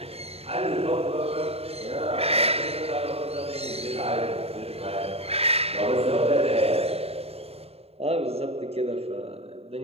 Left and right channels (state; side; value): late; left; 0.29 ms